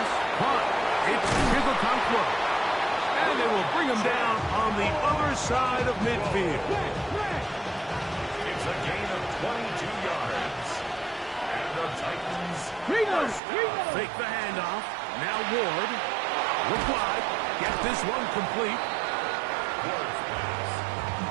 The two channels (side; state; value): left; drops out; at 13.4 s